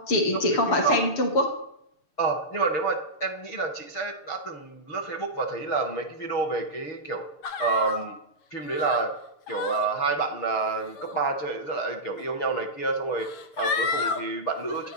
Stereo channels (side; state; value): right; late; 6.8 ms